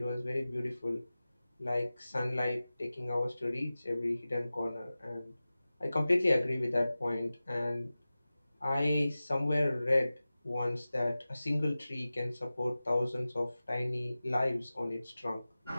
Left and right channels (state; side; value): inverted; both; correlation -0.96